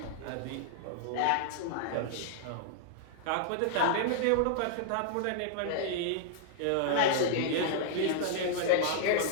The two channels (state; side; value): different; both; correlation -0.01